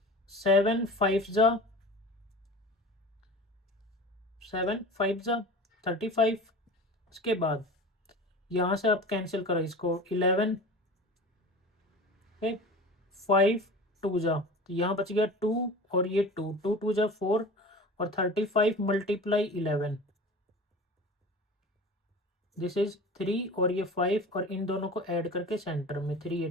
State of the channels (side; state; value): both; normal; correlation 0.36